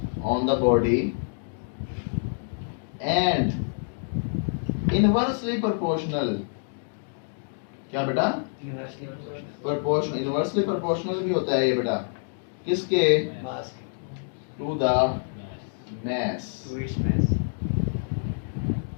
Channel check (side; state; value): right; silent; digital silence